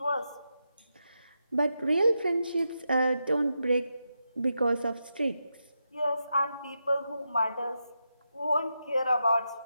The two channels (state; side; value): inverted; both; correlation -0.86